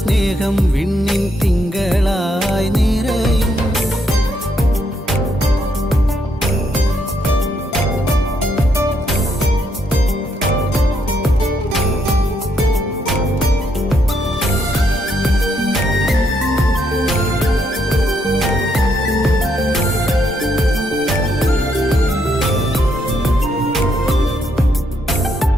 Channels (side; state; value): both; normal; correlation 0.75